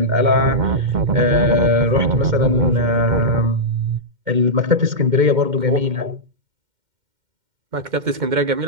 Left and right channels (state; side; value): late; left; 2.1 ms